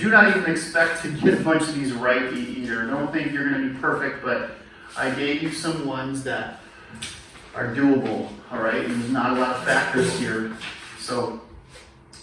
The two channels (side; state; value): both; identical; correlation 1.00